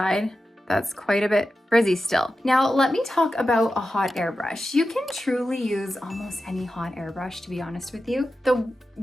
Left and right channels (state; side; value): normal; both; correlation 0.92